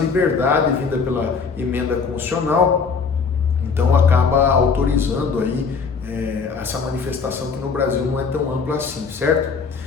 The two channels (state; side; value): quieter; right; 5.3 dB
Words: vinda pela emenda constitucional, então acaba autorizando aí essa manifestação que no Brasil não é tão ampla assim, certo?